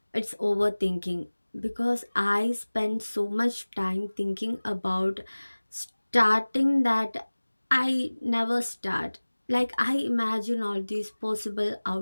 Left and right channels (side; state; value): both; inverted; correlation -1.00